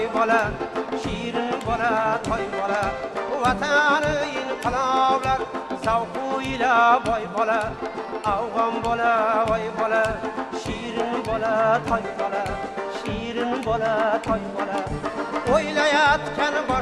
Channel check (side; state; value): both; identical; correlation 1.00